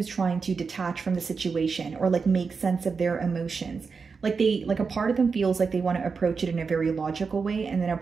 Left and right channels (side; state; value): left; quieter; 5.1 dB